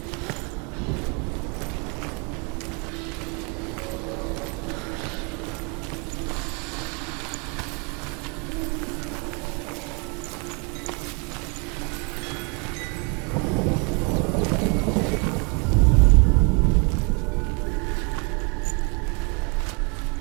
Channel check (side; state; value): left; quieter; 33.6 dB